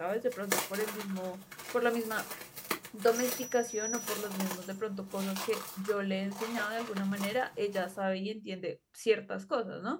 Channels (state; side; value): identical; both; correlation 1.00